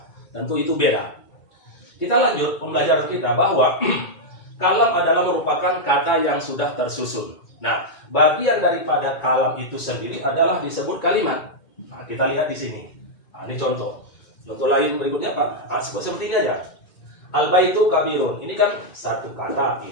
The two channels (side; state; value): right; late; 2.2 ms